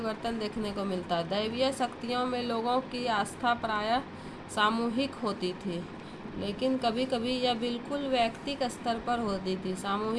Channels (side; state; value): both; identical; correlation 1.00